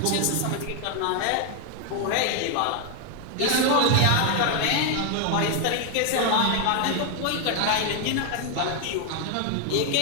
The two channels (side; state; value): both; different; correlation 0.00